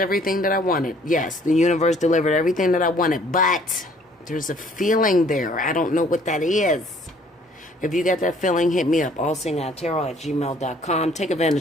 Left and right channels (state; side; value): normal; both; correlation 0.59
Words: that I wanted. Yes, the universe delivered everything that I wanted. But there's a feeling there. I don't know what that is. If you got that feeling, hit me up. Allseeingeyetarot@gmail.com. Take